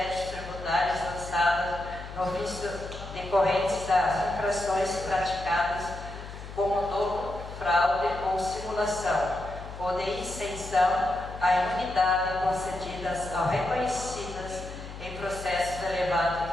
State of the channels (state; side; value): noise; left; hum, 12 dB below the sound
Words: tributários lançados no ofício decorrentes das infrações praticadas como dolo, fraude ou simulação, ou de isenção à imunidade concedidas ao reconhecidas em processos elevados